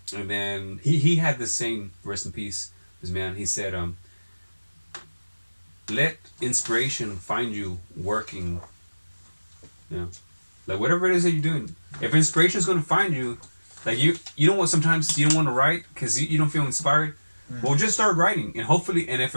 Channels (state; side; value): inverted; both; correlation -1.00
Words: and then he had this saying, rest in peace, this man. He said, "Let inspiration find you working. You know, like whatever it is that you're doing. If inspiration is going to find you, like you don't want, sometimes you don't want to write because you don't feel inspired. Well, just start writing, and hopefully, and if